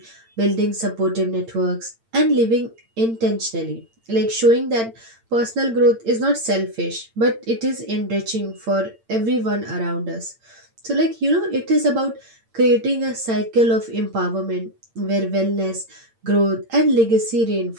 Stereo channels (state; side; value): late; left; 8.8 ms